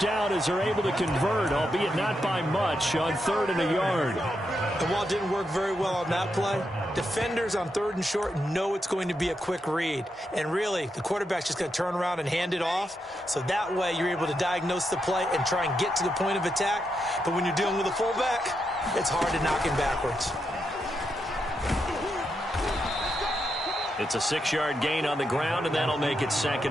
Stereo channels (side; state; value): both; normal; correlation 0.83